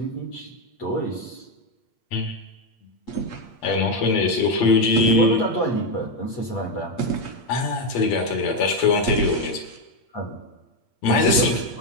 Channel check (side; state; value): right; late; 8.5 ms